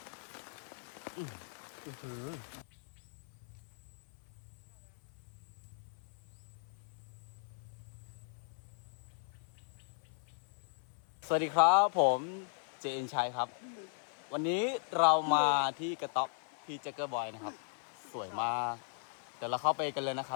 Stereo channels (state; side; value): silent; right; 53 dB below the other